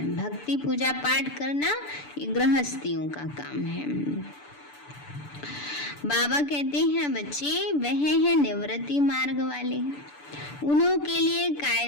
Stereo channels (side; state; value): right; late; 6.9 ms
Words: भक्ति पूजा पाठ करना ये गृहस्थियों का काम है। बाबा कहते हैं बच्चे वह है निवृत्ति मार्ग वाले, उन्हों के लिए